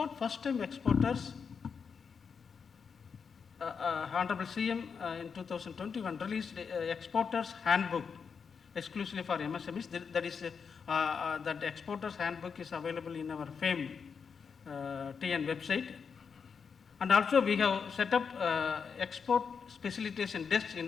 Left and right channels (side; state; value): right; quieter; 6.1 dB